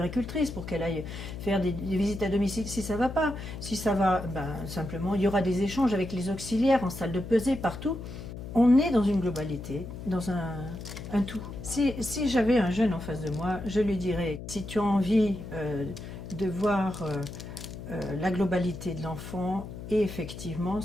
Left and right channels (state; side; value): noise; left; hum, 10 dB below the sound